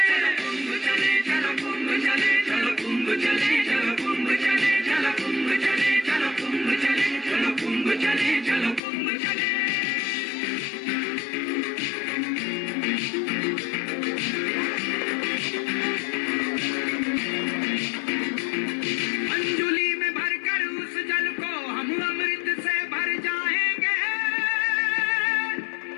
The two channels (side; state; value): right; drops out; at 8.8 s